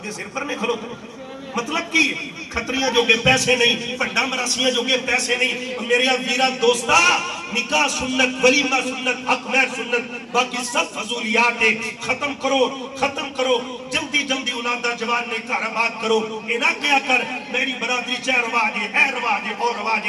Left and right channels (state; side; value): identical; both; correlation 1.00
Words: سر پر نہیں کھلو مطلب کی خطریاں جو کہ پیسے نہیں پنڈا مراسیاں جو کہ پیسے نہیں میرے ویرہ دوستا نکاح سنت ولیمہ سنت حق مہر سنت باقی سب فضولیات ختم کرو جلدی اولادہ جوان نے کا رباد کرو یہ نہ کیا کر میری برادری چاہ رواجے اے رواجے اور